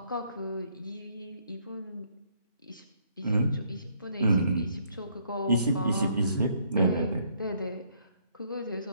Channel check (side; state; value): both; inverted; correlation -0.68